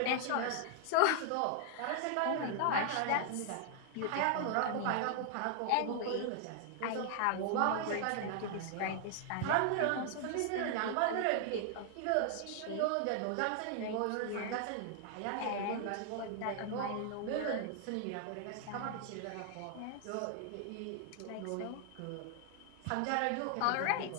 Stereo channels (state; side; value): different; both; correlation 0.00